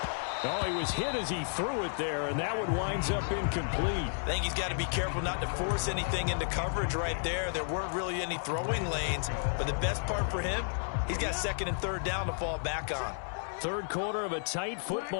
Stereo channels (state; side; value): silent; right; digital silence